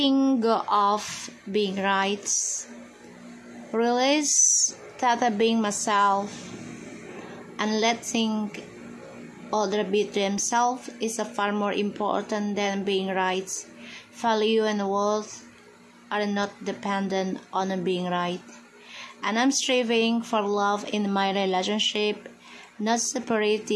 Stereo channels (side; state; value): both; identical; correlation 1.00